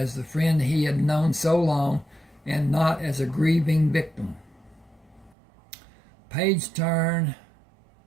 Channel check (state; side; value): drops out; left; at 5.4 s